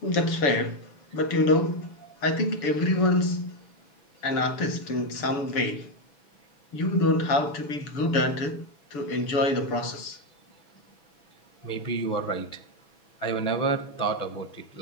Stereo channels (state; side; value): late; right; 6.9 ms